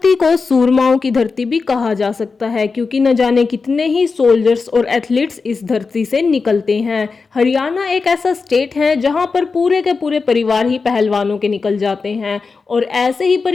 को सूरमाओं की धरती भी कहा जा सकता है क्योंकि न जाने कितने ही सोल्जर्स और एथलीट्स इस धरती से निकलते हैं। हरियाणा एक ऐसा स्टेट है जहां पर पूरे के पूरे परिवार ही पहलवानों के निकल जाते हैं और ऐसे ही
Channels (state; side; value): quieter; right; 4.6 dB